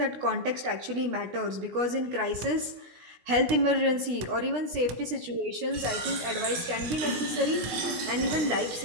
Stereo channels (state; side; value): late; left; 16 ms